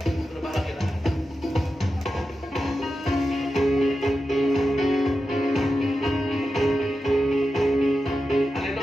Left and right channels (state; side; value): normal; both; correlation 0.91